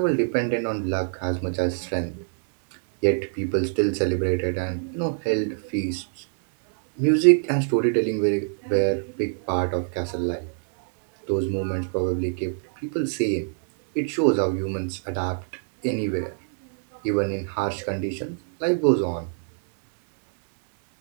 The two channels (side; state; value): left; silent; digital silence